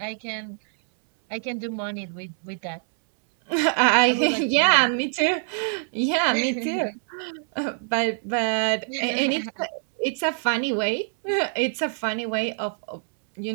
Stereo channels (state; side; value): silent; left; 62 dB below the other